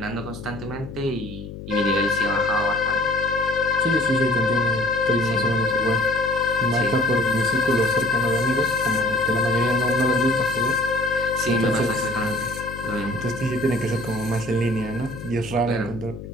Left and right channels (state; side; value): noise; left; hum, 12 dB below the sound